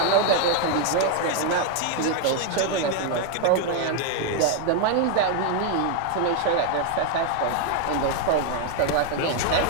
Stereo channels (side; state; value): both; different; correlation 0.00